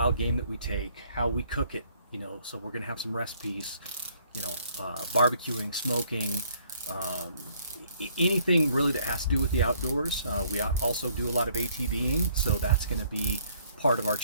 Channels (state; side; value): inverted; both; correlation -0.63